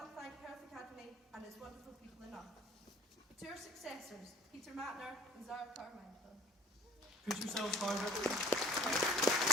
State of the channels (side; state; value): both; normal; correlation 0.50